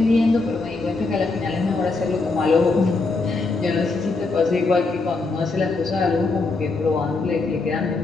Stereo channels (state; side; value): quieter; right; 3.7 dB